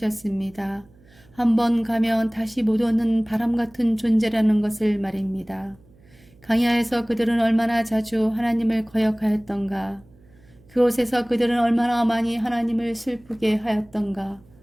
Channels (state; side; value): noise; right; hum, 28 dB below the sound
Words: 한번 가면 다시 못 오는 바람 같은 존재라는 것을 말입니다. 광야에서 그들은 얼마나 자주 하나님을 거역하였던가. 그곳에서 그들은 얼마나 많이 하나님을 슬프게 하였던가.